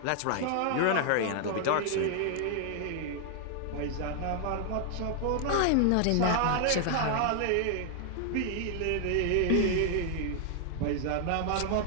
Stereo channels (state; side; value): different; both; correlation 0.00